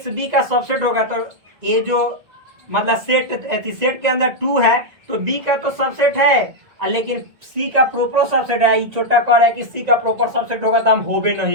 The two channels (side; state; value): left; late; 1.7 ms